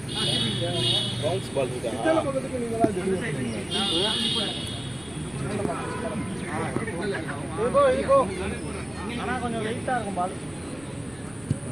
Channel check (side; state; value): left; noise; rumble, 23 dB below the sound